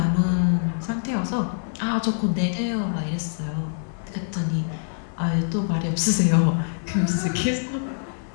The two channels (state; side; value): silent; right; digital silence